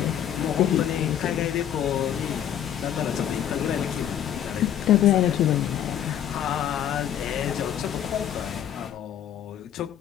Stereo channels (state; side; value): quieter; right; 10.2 dB